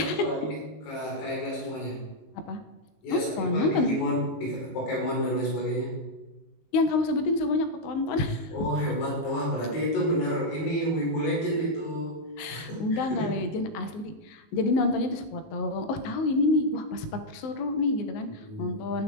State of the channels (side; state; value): right; late; 19 ms